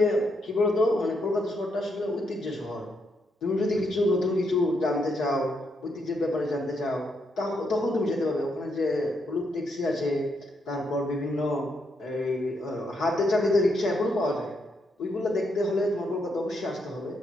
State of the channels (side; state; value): both; normal; correlation 0.78